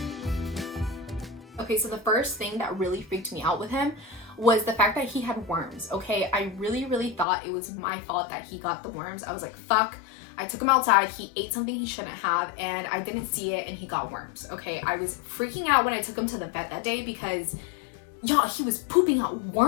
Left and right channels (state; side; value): drops out; right; at 7.2 s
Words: Okay, so the first thing that really freaked me out with him was the fact that he had worms, okay? I really thought it was my fault that he got the worms. I was like, fuck. I took him outside, he ate something he shouldn't have, and I didn't see it, and he got worms, okay? I was freaking out when I took him to the vet that day because, y'all, he was pooping out